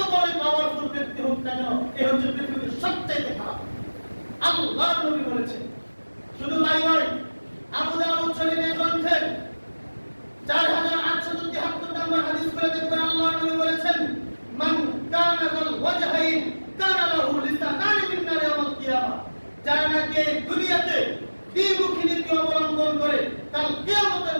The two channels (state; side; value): inverted; both; correlation -1.00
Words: বড় পাওয়ারফুল ব্যক্তি হোক না কেন, এই হচ্ছে পৃথিবীর সবচেয়ে খারাপ। আল্লাহর নবী বলেছেন। শুধু তাই নয়, আবু দাউদ শরীফের গ্রন্থের 4873 নম্বর হাদিস করে দেখবেন, আল্লাহর নবী বলেছেন, মান কানা যাল ওয়াজহাইন কানা লাহু লিসানান মিন নার ইয়াউমাল কিয়ামা, যারা নাকি দুনিয়াতে দ্বিমুখী নীতি অবলম্বন করে কাল কিয়ামতের